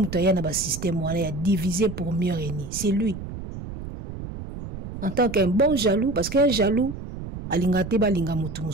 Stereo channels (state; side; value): noise; right; rumble, 9 dB below the sound